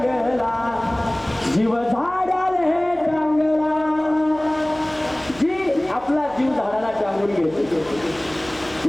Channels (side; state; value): right; noise; hum, 21 dB below the sound